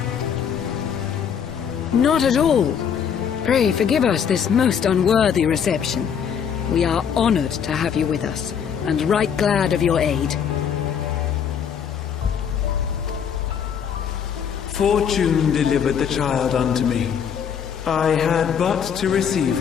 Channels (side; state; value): right; quieter; 7.7 dB